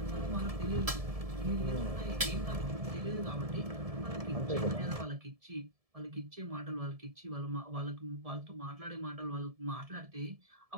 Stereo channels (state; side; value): late; left; 1.7 ms